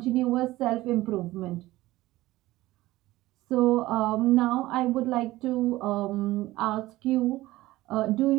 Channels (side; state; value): left; quieter; 17.5 dB